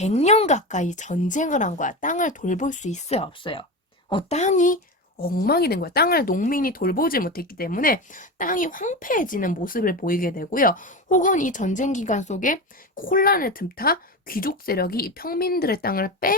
가까이 전쟁을 한 거야. 땅을 돌볼 수 있어요, 없어요? 땅이 엉망이 된 거야. 땅을 농민이 돌보지 못했기 때문에 땅이 황폐해지는 모습을 보이게 되고요. 혹은 이 전쟁 기간 속에 혼란을 틈타 귀족 세력이 이 평민들의 땅을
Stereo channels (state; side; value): normal; both; correlation 0.22